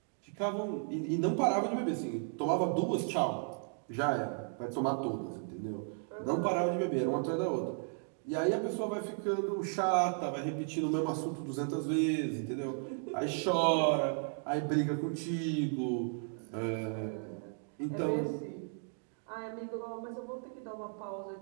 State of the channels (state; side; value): silent; left; 55 dB below the other